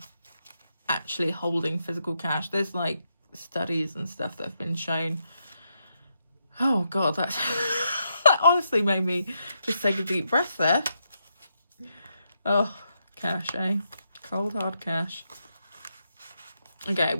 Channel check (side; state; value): both; inverted; correlation -0.82